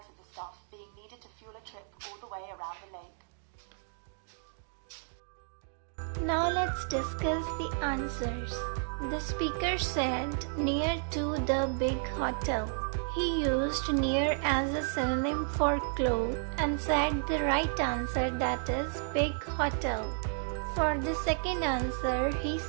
of the stuff being needed to fuel a trip all the way around the lake. Now let's discuss the answers. The speaker said near to the big hotel. He used near as a synonym for close and said the right answer, that is big hotel. For the second answer, he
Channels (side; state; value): left; silent; 56 dB below the other